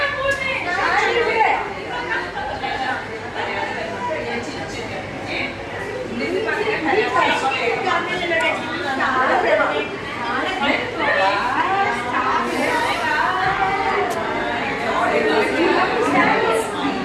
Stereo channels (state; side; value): identical; both; correlation 1.00